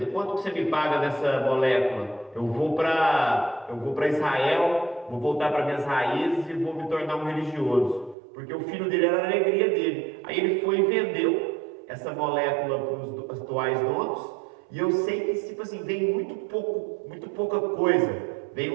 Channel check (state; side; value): drops out; left; at 8.2 s